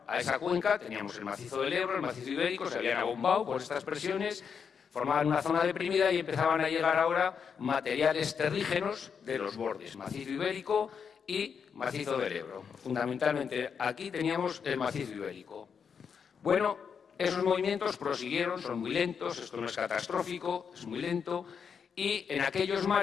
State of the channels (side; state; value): right; quieter; 6.7 dB